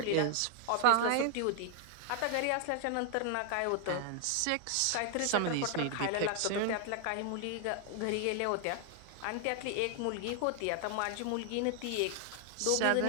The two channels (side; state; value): both; different; correlation 0.00